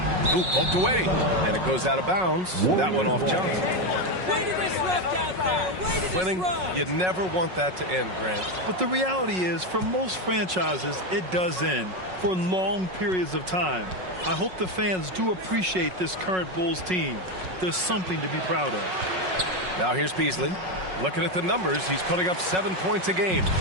Ooh, poked away. And it goes out of bounds. That one off Johnson. Way to disrupt out there. Way to Winning, disrupt. you never want that to end, Grant. But the reality is, for most franchises, it does end for long periods of time. I hope the fans do appreciate this current Bulls team. There's something to be proud of. Now here's Beasley. Looking at the numbers, he's putting up 7 points a game.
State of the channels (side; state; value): left; late; 5.4 ms